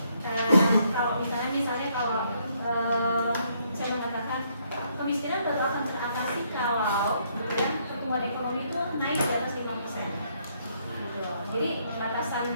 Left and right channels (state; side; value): inverted; both; correlation -0.71